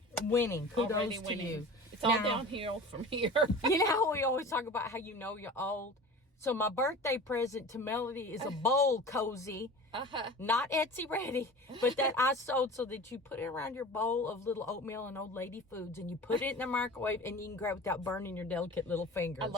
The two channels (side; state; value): both; normal; correlation 0.37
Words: Kudos Already to winning. you. It's all downhill from here. You know how we always talk about how you know you're old? So my birthday present to Melody is a bowl cozy. Not Etsy ready, but that I sold so that you put it around your bowl of little oatmeal and old lady foods, and you put it in the microwave, and you can grab it without burning your delicate little fingers. I